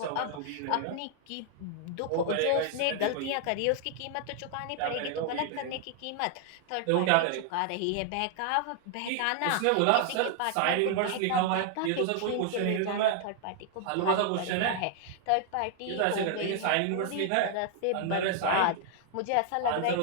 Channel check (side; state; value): both; different; correlation 0.00